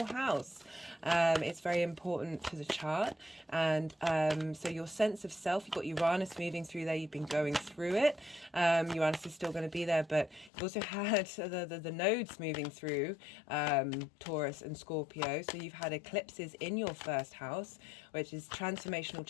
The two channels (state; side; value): drops out; right; at 10.5 s